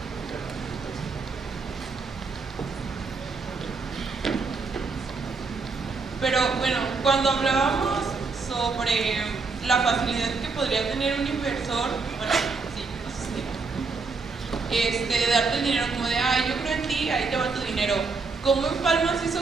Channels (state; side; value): quieter; left; 4.4 dB